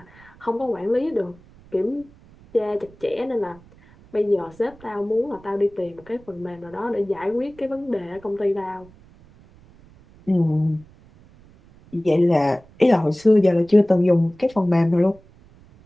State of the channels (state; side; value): noise; right; rumble, 26 dB below the sound